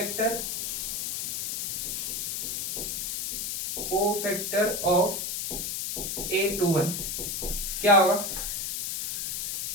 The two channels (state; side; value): noise; left; hiss, 2 dB below the sound